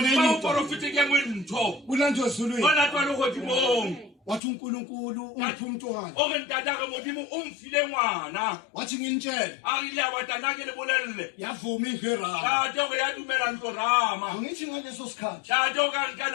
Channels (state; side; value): drops out; right; at 4.4 s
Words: enye into kulanjwe ezulwini wathi uNkulunkulu ungiphi umntwana wathi nginitshele yavuma iVerama angithi ngaleso sikhathi